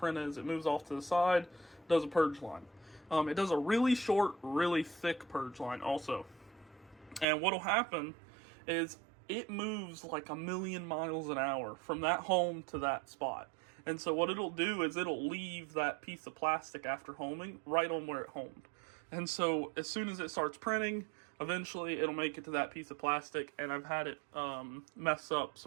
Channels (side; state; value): left; drops out; at 7.2 s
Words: is. It moves off to the side, does a purge line. It does a really short, really thick purge line also. And what'll happen is it moves like 1,000,000 miles an hour from that home to that spot. And so what it'll do is it'll leave that piece of plastic after homing right on where it homed. And so as soon as it starts printing, eventually it'll make it to that piece of plastic, and I've had it mess up